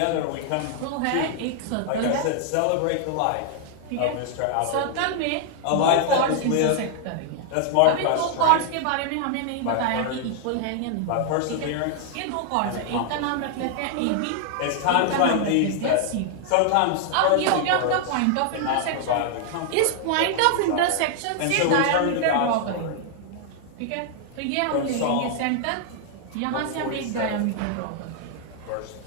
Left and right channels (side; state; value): both; different; correlation 0.00